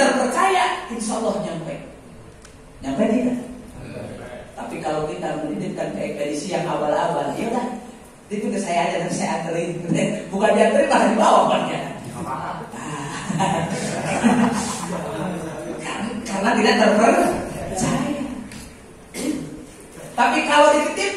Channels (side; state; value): both; identical; correlation 1.00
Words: insya Allah nyampe tidak? Tapi kalau kita menitipkan ke ekspedisi yang abal-abal, ya udah, itu ke saya aja dan saya anterin. Bukan dianterin, malah dibawa banyak. Karena tidak terpercaya. Tapi kalau